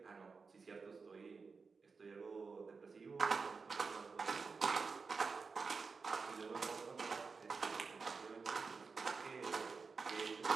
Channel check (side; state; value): left; quieter; 4.8 dB